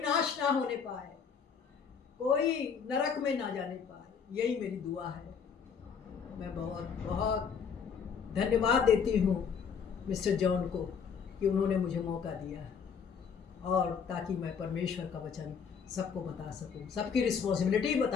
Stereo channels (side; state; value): right; quieter; 6.6 dB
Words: नाश ना होने पाए, कोई नरक में ना जाने पाए. यही मेरी दुआ है. मैं बहुत बहुत धन्यवाद देती हूँ मिस्टर जॉन को कि उन्होंने मुझे मौका दिया, और ताकि मैं परमेश्वर का वचन सबको बता सकूं, सबकी रिस्पॉन्सिबिलिटी